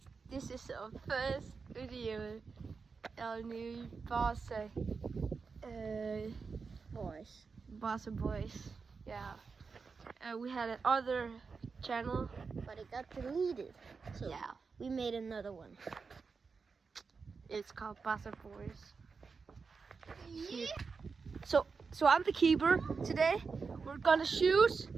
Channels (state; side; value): quieter; left; 5.0 dB